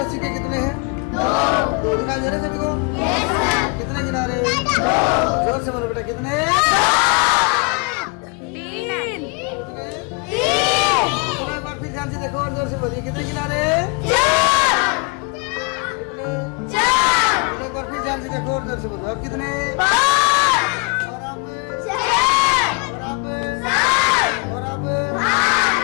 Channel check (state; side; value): quieter; right; 31.5 dB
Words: के कितने हैं? दो। दिखाई दे रहे सभी को? कितने किनारे? जोर से बोलो बेटा, कितने? एक बार फिर ध्यान से देखो और जोर से बोलिए, कितने किनारे? कितने? एक बार फिर ध्यान से देखो और जोर से बोलो, अब कितने? और अब